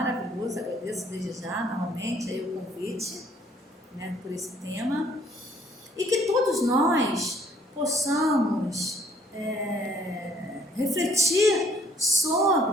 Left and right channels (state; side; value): normal; both; correlation 0.62